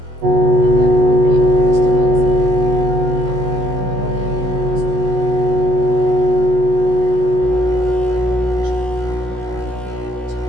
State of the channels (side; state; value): left; late; 16 ms